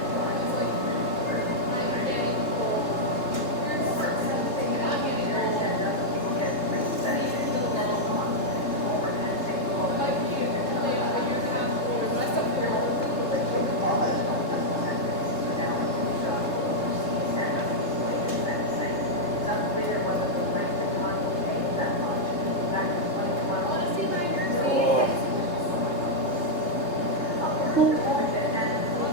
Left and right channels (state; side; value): late; right; 4.0 ms